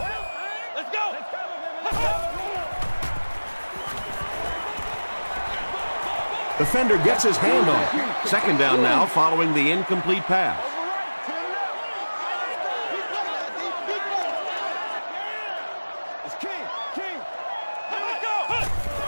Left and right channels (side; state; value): both; inverted; correlation -1.00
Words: Defender gets his hand on it. Second down now following the incomplete pass.